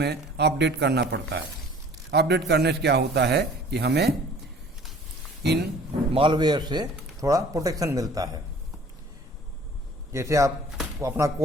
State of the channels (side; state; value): both; normal; correlation 0.50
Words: अपडेट करना पड़ता है। अपडेट करने से क्या होता है कि हमें इन मालवेयर से थोड़ा प्रोटेक्शन मिलता है। जैसे आप अपना